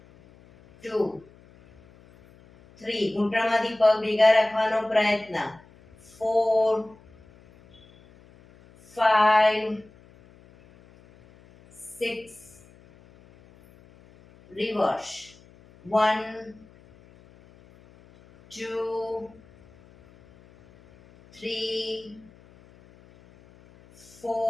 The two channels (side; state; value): left; noise; hum, 26 dB below the sound